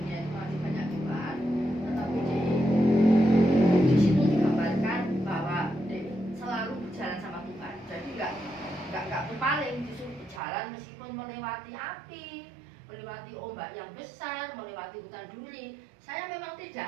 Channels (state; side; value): drops out; left; at 10.4 s